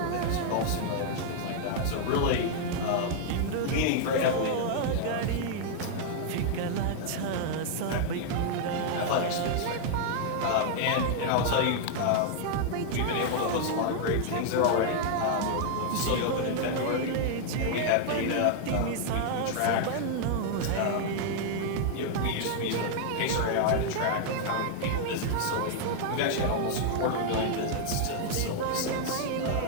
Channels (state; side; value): different; both; correlation -0.01